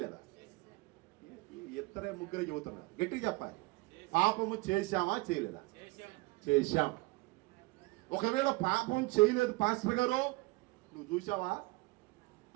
ఇద్దరే ముగ్గురే చెబుతున్నారు. గట్టిగా చెప్పాలి. పాపము చేశామా చేయలేదా? చేశాం. ఒకవేళ పాపం చేయలేదు పాస్టర్ గారు నువ్వు చూసావా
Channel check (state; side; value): quieter; left; 23.5 dB